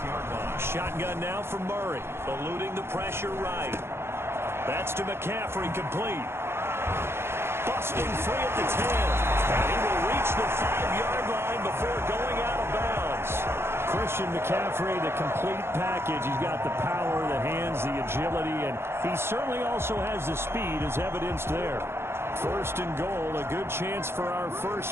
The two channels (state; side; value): late; left; 0.12 ms